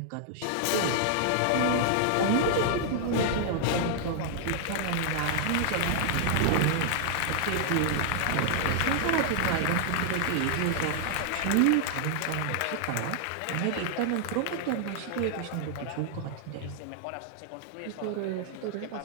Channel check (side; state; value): both; different; correlation -0.01